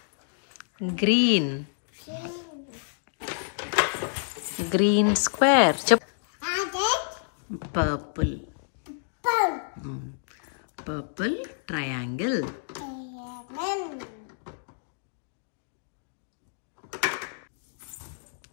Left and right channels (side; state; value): right; silent; digital silence